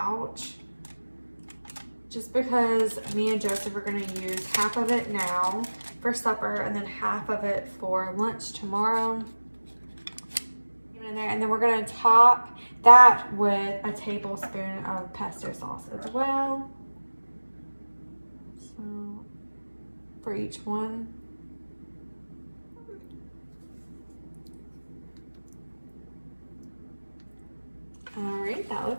just because me and Joseph are going to use half of it now for supper and then half of it for lunch tomorrow. In there, and then we're going to top that with a tablespoon of pesto sauce as well. So for each one. Alright, that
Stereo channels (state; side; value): inverted; both; correlation -1.00